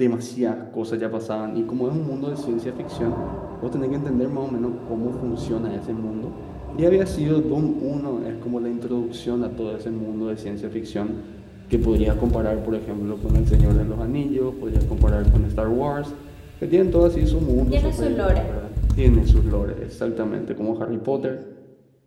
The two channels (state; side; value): identical; both; correlation 1.00